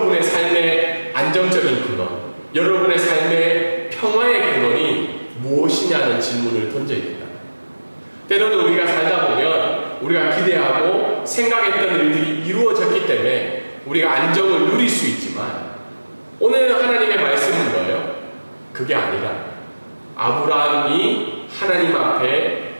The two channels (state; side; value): inverted; both; correlation -1.00